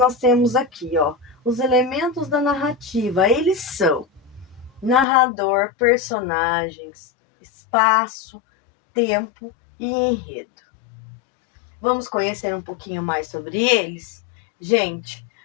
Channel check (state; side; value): drops out; right; at 5.1 s